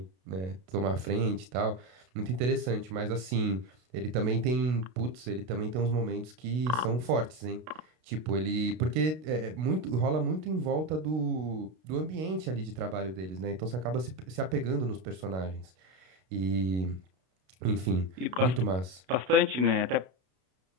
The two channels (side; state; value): left; late; 32 ms